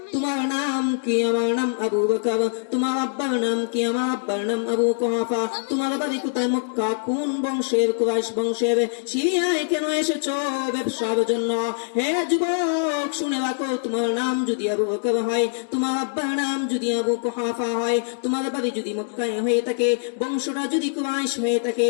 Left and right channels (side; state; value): right; silent; digital silence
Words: তোমার নাম কি? আমার নাম আবু বকর। তোমার আব্বার নাম কি? আমার আব্বার নাম আবু কুহাফা। তোমার বাড়ি কোথায়? মক্কা। কোন বংশের? কুরাইশ বংশের। সিরিয়ায় কেন এসেছো? ব্যবসার জন্য। হে যুবক, শুনে রাখো, তোমার নাম যদি আবু বকর হয়, তোমার আব্বার নাম যদি আবু কুহাফা হয়, তোমার বাড়ি যদি মক্কায় হয়ে থাকে, বংশটা যদি কুরাইশ হয়ে থাকে,